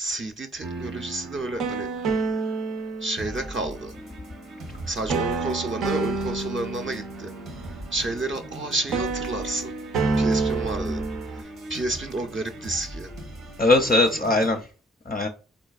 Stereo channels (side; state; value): both; normal; correlation 0.58